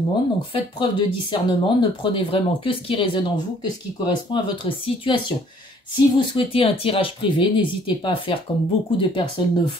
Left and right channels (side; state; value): both; normal; correlation 0.59